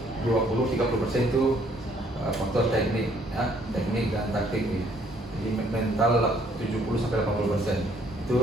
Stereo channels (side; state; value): both; normal; correlation 0.64